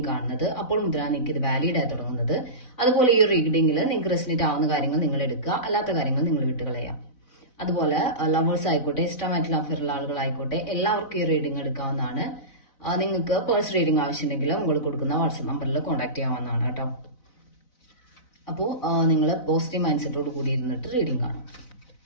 കാണുന്നത് അപ്പോൾ മുതലാണ് നിങ്ങൾക്ക് ഇത് വാലിഡ് ആയി തുടങ്ങുന്നത്. അതുപോലെ ഈ റീഡിംഗിൽ നിങ്ങൾക്ക് റെസിനേറ്റ് ആവുന്ന കാര്യങ്ങൾ നിങ്ങൾ എടുക്കുക, അല്ലാത്ത കാര്യങ്ങൾ നിങ്ങൾ വിട്ടുകളയാം. അതുപോലെ ലവേഴ്സ് ആയിക്കോട്ടെ, ഇഷ്ടമായിട്ടുള്ള അഫയറുള്ള ആളുകളായിക്കോട്ടെ, എല്ലാവർക്കും ഈ റീഡിംഗ് എടുക്കാവുന്നതാണ്. നിങ്ങൾക്ക് പേഴ്സണൽ റീഡിംഗ് ആവശ്യമുണ്ടെങ്കിൽ മുകളിൽ കൊടുക്കുന്ന വാട്സ്ആപ്പ് നമ്പറിൽ കോൺടാക്ട് ചെയ്യാവുന്നതാണ് കേട്ടോ. അപ്പോൾ നിങ്ങൾ പോസിറ്റീവ് മൈൻഡ് സെറ്റോട് കൂടി ഇരുന്നിട്ട് റീഡിംഗ് കാണും.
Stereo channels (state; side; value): late; right; 4.0 ms